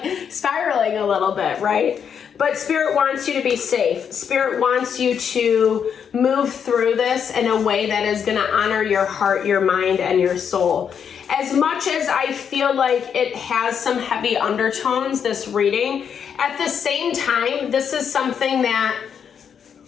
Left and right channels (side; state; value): right; quieter; 7.6 dB